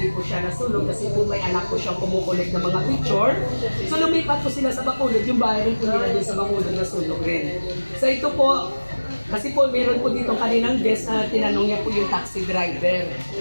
po siya nasunog kasi po may anak po siyang kumukulit ng mga picture. So lumipat po sila sa Bacolod. Yung bahay rin po nila din sa Bacolod nasunog rin. So ito po, kasi po meron po dito kaninang guest na tinanong niya po yung taxi driver.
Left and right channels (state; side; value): inverted; both; correlation -1.00